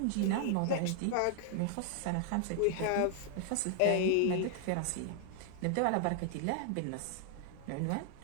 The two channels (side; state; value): both; different; correlation 0.00